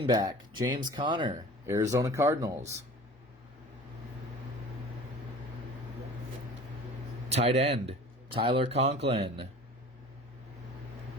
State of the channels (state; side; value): normal; both; correlation 0.42